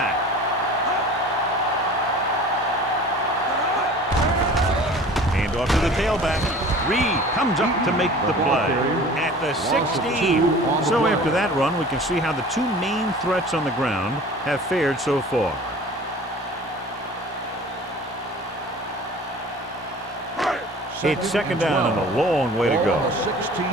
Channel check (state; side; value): normal; both; correlation 0.44